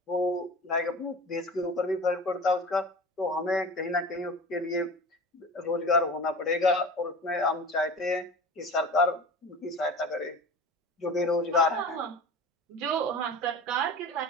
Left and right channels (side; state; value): both; normal; correlation 0.35